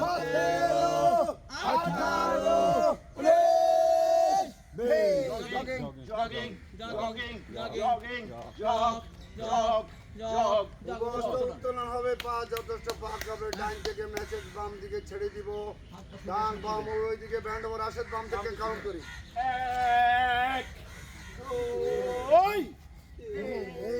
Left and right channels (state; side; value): identical; both; correlation 1.00